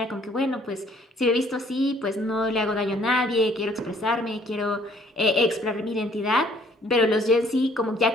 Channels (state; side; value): normal; both; correlation 0.60